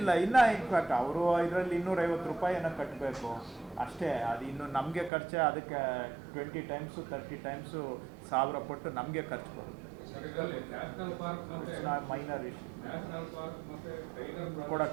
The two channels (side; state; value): left; drops out; at 5.1 s